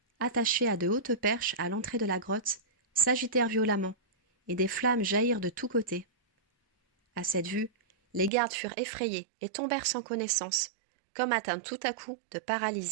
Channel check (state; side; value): drops out; left; at 8.3 s